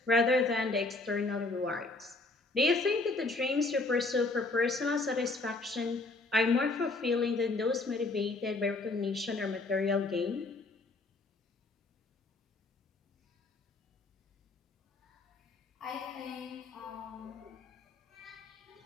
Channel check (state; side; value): quieter; right; 3.3 dB